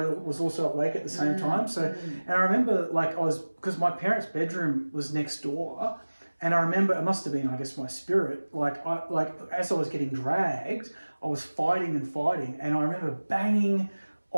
was also awake at the same time. So, and I remember because my parents' bedroom was next door, and I remember it must have been, I guess, my spirit. As I was getting dragged, I was fighting, and I remember banging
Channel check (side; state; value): both; inverted; correlation -1.00